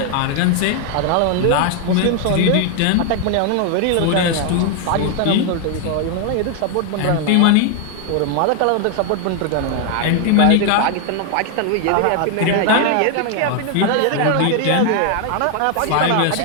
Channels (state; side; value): different; both; correlation 0.00